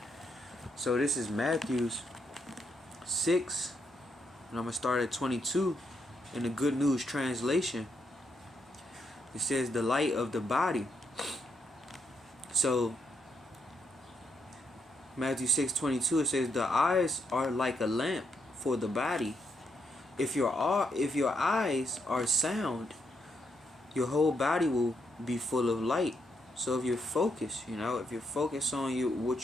So this is Matthew 6, and I'm gonna start at 22 in the Good News translation. It says, "The light of the body." So Matthew 6:22, it says, "The eyes are like a lamp for the body. If your eyes are sound, your whole body will be full of light." So if you're focused, if you're focused on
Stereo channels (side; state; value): both; normal; correlation 0.78